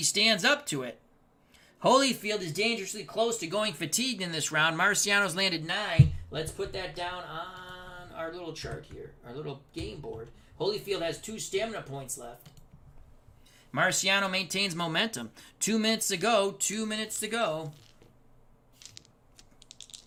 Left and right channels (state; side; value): identical; both; correlation 1.00